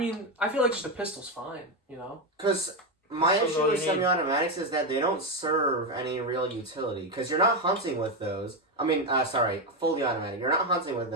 I feel like just a pistol's fine. You know. Because my issue with semi-automatics is that they don't serve any real utility. Because you're not hunting with those. I mean, fully automatic. You're not hunting with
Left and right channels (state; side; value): normal; both; correlation 0.09